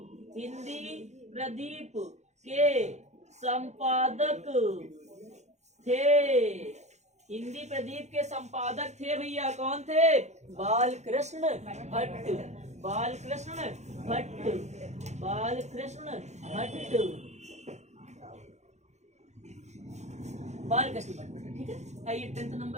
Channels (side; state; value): left; late; 0.33 ms